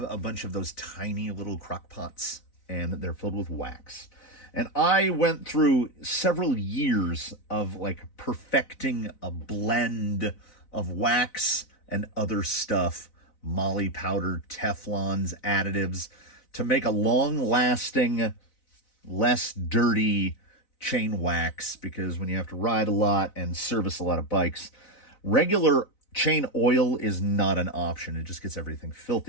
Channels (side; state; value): right; late; 4.0 ms